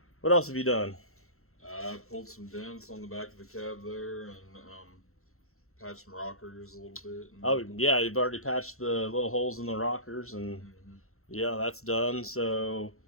What else have you done? I pulled some dents on the back of the cab there, and patched some rockers a little bit. Oh yeah, you've already patched the little holes in the rockers, and yeah, that's done. So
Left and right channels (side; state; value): right; late; 0.63 ms